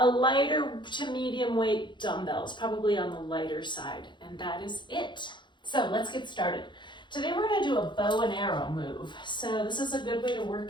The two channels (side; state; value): right; late; 0.23 ms